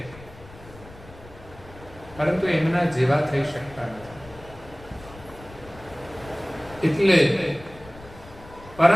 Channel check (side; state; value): left; noise; rumble, 19 dB below the sound